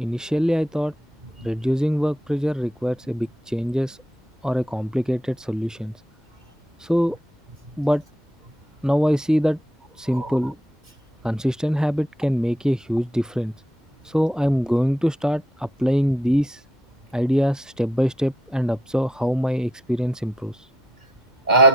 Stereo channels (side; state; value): both; normal; correlation 0.76